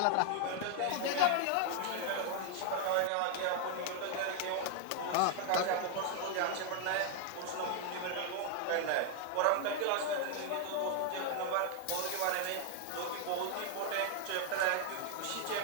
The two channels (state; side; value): different; both; correlation 0.00